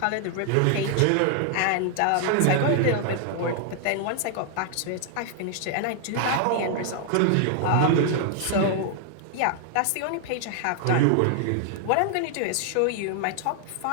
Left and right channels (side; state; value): both; different; correlation 0.00